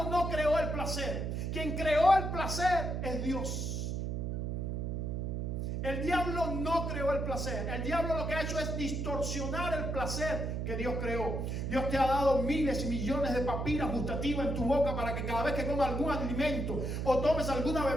no creó el placer. Quien creó el placer es Dios. El diablo no creó el placer. El diablo lo que ha hecho es distorsionar el placer que Dios creó. Dios te ha dado miles y millones de papilas gustativas en tu boca para que cada vez que comas algún alimento o tomes alguna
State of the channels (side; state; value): right; noise; hum, 2 dB below the sound